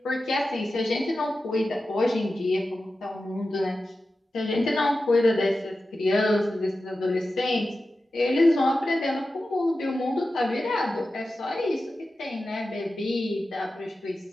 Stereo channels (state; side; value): normal; both; correlation 0.93